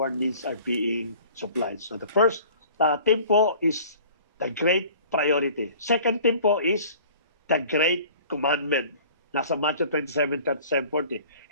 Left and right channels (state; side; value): inverted; both; correlation -0.48